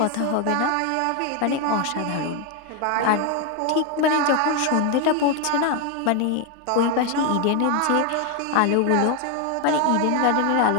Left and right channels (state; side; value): different; both; correlation 0.01